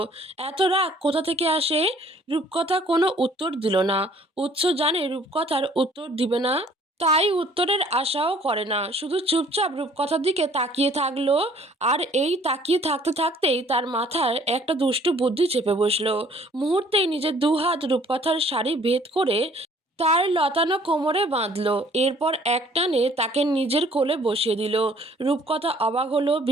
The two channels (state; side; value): normal; both; correlation 0.57